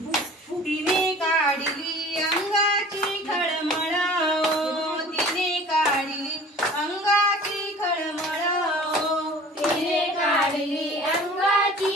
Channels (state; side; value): normal; both; correlation 0.45